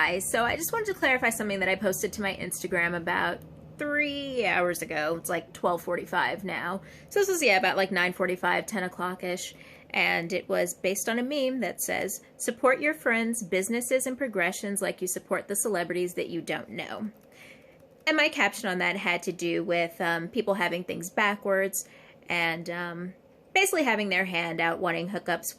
So I just wanted to clarify something that I posted to my Instagram about 3 hours ago. It's like 12:45 now. So this was, about like 9:45, 10 o'clock-ish. And it was based on a meme that says, support your friends, businesses, and progressions like you support the celebrities that you don't know. And my caption on that had to do with people having things backwards and basically having their hand out wanting hookups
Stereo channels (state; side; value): identical; both; correlation 1.00